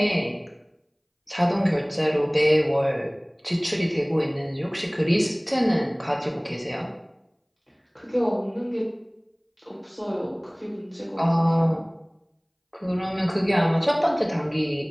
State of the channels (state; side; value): identical; both; correlation 1.00